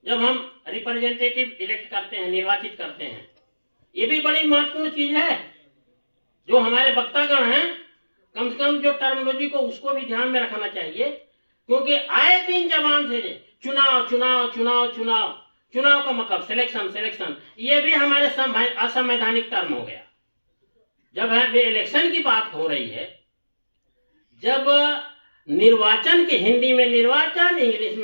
जब हम रिप्रेजेंटेटिव इलेक्ट करते हैं, निर्वाचित करते हैं, ये भी बड़ी महत्वपूर्ण चीज है जो हमारे वक्तागण हैं कम से कम जो टर्मिनोलॉजी को उसको भी ध्यान में रखना चाहिए, क्योंकि आए दिन जबान से चुनाव चुनाव चुनाव चुनाव, चुनाव का मतलब सिलेक्शन सिलेक्शन, ये भी हमारे असंवैधानिक टर्म हो गया। जब है इलेक्शन की बात हो रही है, जब निर्वाचन के हिंदी में निर्वाचन, इंग्लिश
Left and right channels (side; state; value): both; inverted; correlation -1.00